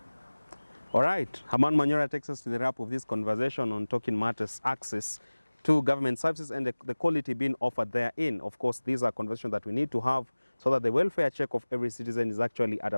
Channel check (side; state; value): both; inverted; correlation -1.00